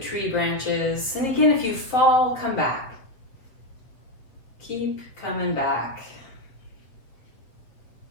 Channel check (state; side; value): late; right; 7.5 ms